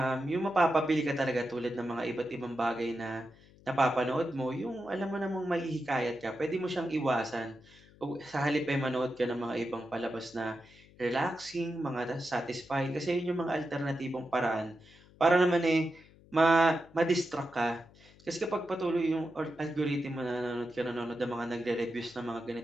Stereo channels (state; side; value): noise; left; hum, 25 dB below the sound